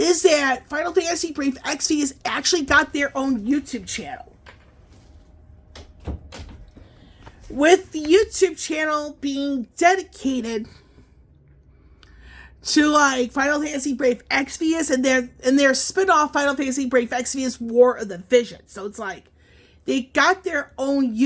that Final Fantasy Brave Exvius actually got their own YouTube channel. With the YouTube channel being dedicated to like Final Fantasy Brave Exvius and their spin-off Final Fantasy Brave Exvius War of the Vision. So it's like they got their own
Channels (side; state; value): both; identical; correlation 1.00